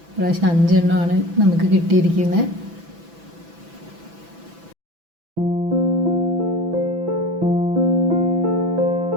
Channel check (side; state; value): left; late; 6.0 ms